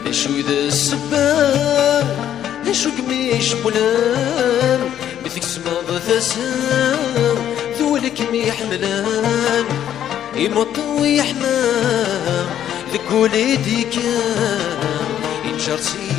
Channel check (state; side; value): quieter; right; 10.6 dB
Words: ذا شوي ذا السبان ذا شو قميش بولان مثل سما ثسام ذولك ميحملان يمط ويحمام ذك وليدي كان ينشر